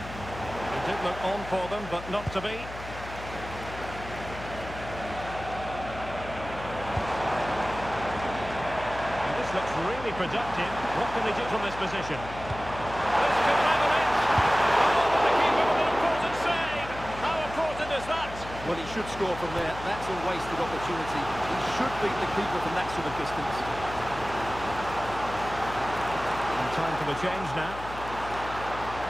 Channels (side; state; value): left; noise; hum, 12 dB below the sound